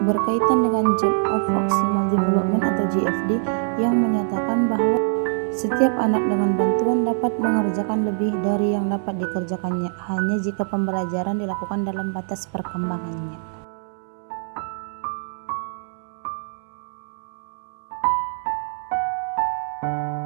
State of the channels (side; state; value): left; silent; digital silence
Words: dengan Zone of Proximal Development atau GFD yang menyatakan bahwa setiap anak dengan bantuan dapat mengerjakan lebih dari yang dapat dikerjakannya hanya jika pembelajaran dilakukan dalam batas perkembangannya.